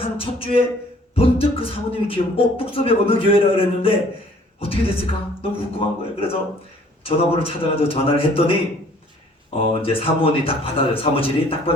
한 첫 주에 번뜩 그 사모님이 뚝섬에 어느 교회라 그랬는데 어떻게 됐을까? 너무 궁금한 거예요. 그래서 전화번호를 찾아가지고 전화를 했더니 이제 사무원이 딱 받아요. 사무실이 딱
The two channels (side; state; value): both; normal; correlation 0.56